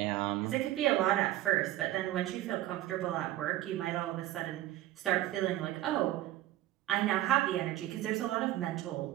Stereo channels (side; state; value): left; quieter; 14.9 dB